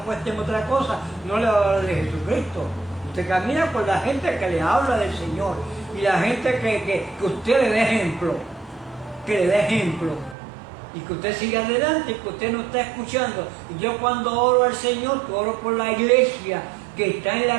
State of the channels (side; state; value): left; drops out; at 10.4 s